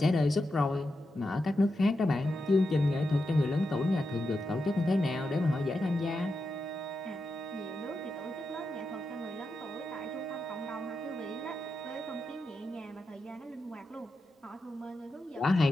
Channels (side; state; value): both; normal; correlation 0.88